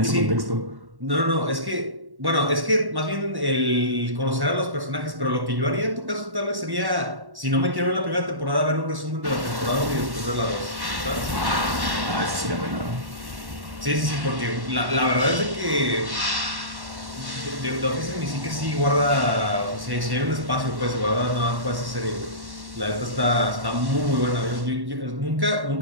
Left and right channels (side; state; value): left; late; 1.1 ms